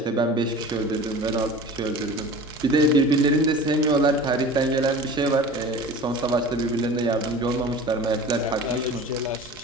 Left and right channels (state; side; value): normal; both; correlation 0.39